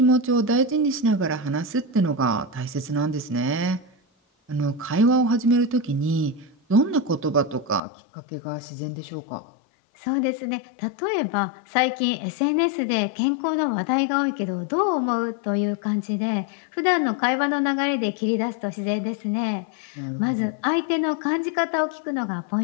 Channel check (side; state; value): right; drops out; at 7.8 s